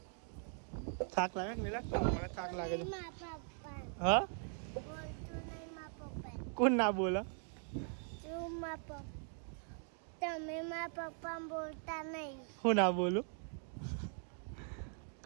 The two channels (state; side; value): silent; left; 51 dB below the other